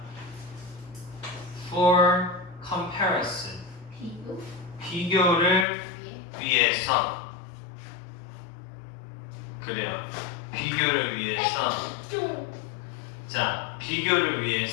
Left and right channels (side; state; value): right; drops out; at 5.7 s